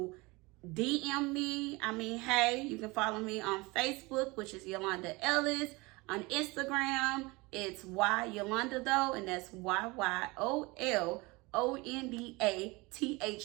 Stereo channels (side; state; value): left; quieter; 24.3 dB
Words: DM me, hey, you can follow me on Facebook, which is Yolanda Ellis. On Instagram, it's Yolanda though, and that's